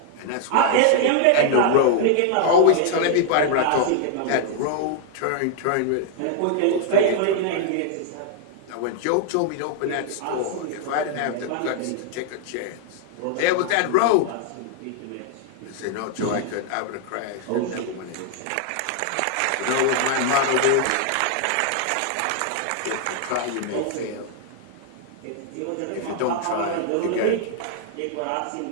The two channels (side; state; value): both; different; correlation 0.00